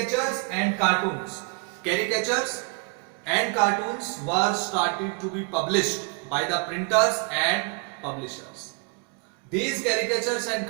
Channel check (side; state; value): left; quieter; 34.0 dB